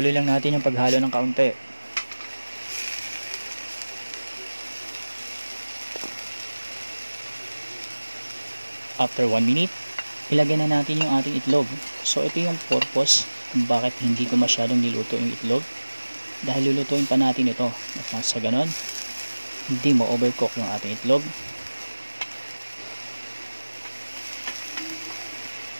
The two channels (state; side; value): inverted; both; correlation -1.00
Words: lang natin yung paghalo ng kaunti. After 1 minute, ilagay na natin yung ating itlog. So ito yung purpose kung bakit hindi ko masyadong niluto yung itlog. Dahil lulutuin pa natin ito. At nang sa ganon, hindi mo overcook yung ating itlog.